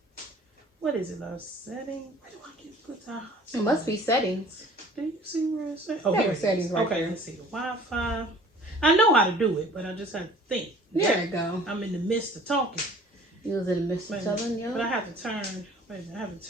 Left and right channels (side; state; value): both; normal; correlation 0.49